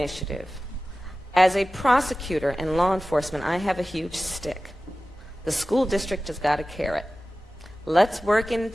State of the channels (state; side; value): normal; both; correlation 0.96